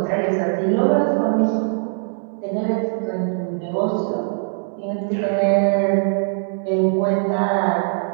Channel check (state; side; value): silent; left; 59 dB below the other